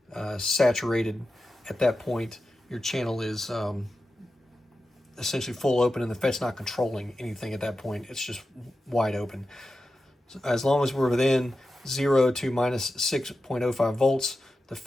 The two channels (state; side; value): normal; both; correlation 0.92